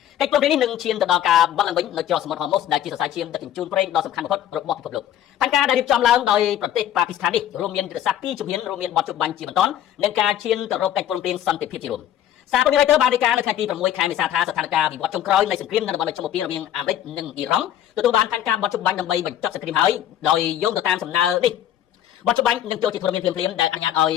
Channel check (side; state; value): right; quieter; 11.3 dB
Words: កិច្ចព្រមព្រៀងនេះនឹងឈានទៅដល់ការបាត់ឡើងវិញនៅច្រកសមុទ្រហូម៉ូសដែលជាសរសៃឈាមដឹកជញ្ជូនប្រេងដ៏សំខាន់បំផុតរបស់ពិភពលោកផែនការដែលរៀបចំឡើងដោយប្រទេសប៉ាគីស្ថាននេះរួមមានយុទ្ធសាស្ត្រ2ជំហានរួមមានបោះជំបាញ់ជាបន្តនិងការឈានទៅរកកិច្ចព្រមព្រៀងសន្តិភាពជារួមសារព័ត៌មាន Reuters បានរាយការណ៍នៅថ្ងៃទី6ខែមេសាថាស្ថានភាពវិវត្តចុងក្រោយនៃសង្គ្រាមនៅតំបន់មជ្ឈមបូព៌ារវាងអាមេរិកនិងអ៊ីរ៉ង់ទទួលបានផែនការបោះជំបាញ់ដើម្បីបញ្ចប់សង្គ្រាមហើយដោយយោងទៅតាមសំណើនេះបោះជំបាញ់នឹងចូលជាធរមានភ្លាមៗដែលអនុញ្ញាតឲ្យ